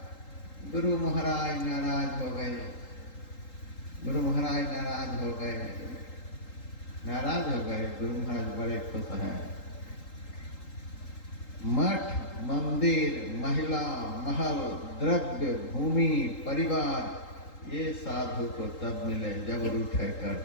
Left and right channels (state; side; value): late; right; 3.8 ms